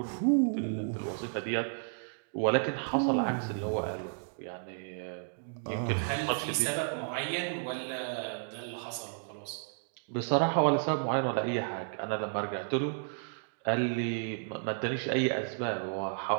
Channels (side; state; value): left; silent; digital silence